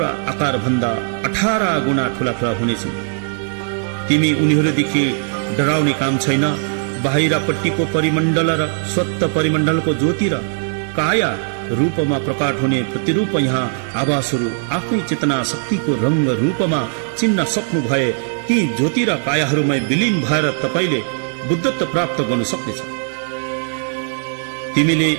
आकार भन्दा 18 गुणा ठूला हुनेछन्। तिमी उनीहरूदेखि डराउने काम छैन। बाहिरपट्टिको परिमण्डल र स्वत परिमण्डलको ज्योति र काया रूपमा प्रकट हुने प्रतिरूप यहाँ आवासहरू आफ्नै चेतना शक्तिको रंग रूपमा चिन्न सक्नु भए ती ज्योति र कायाहरूमा विलीन भएर तपाईले बुद्धत्व प्राप्त गर्न सक्नेछ। तिमीले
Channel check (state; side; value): silent; left; digital silence